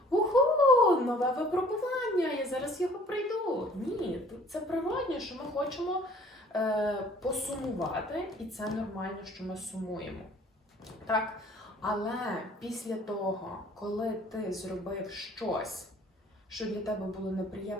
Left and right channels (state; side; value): normal; both; correlation 0.54